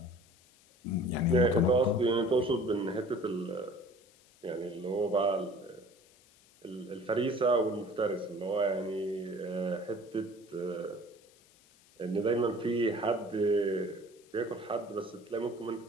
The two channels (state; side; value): noise; left; hiss, 28 dB below the sound